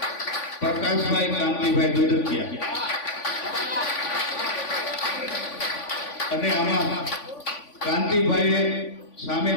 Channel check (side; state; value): right; late; 3.5 ms